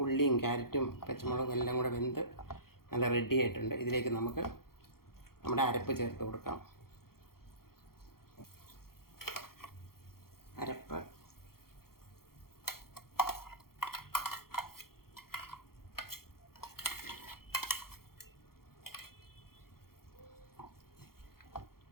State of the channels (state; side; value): late; right; 0.93 ms